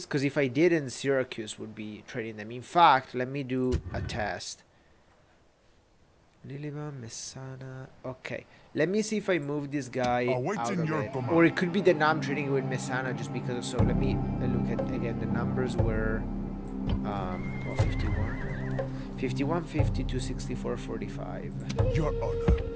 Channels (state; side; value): identical; both; correlation 1.00